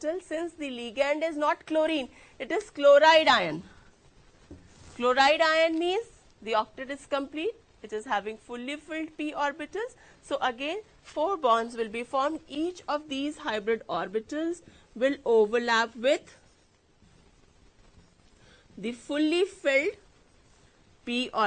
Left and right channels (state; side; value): identical; both; correlation 1.00